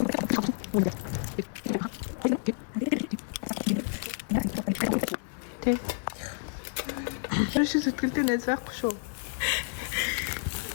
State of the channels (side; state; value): right; silent; 57 dB below the other